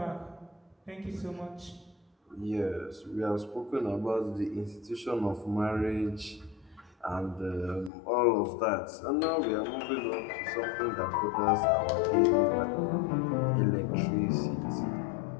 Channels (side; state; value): right; drops out; at 7.9 s